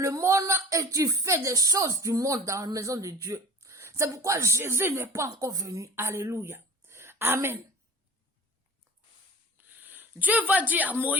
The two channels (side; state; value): both; normal; correlation 0.40